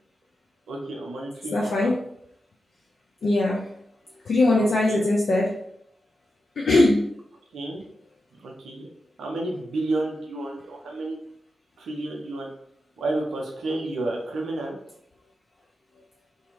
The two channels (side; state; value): both; normal; correlation 0.88